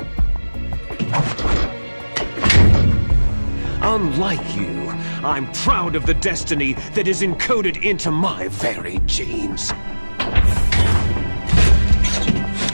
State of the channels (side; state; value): both; inverted; correlation -1.00